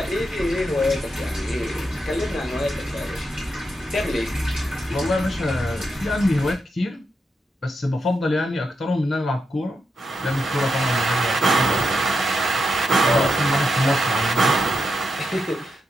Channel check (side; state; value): both; normal; correlation 0.85